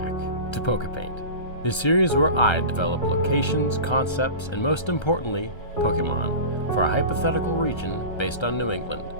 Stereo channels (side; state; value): right; late; 1.3 ms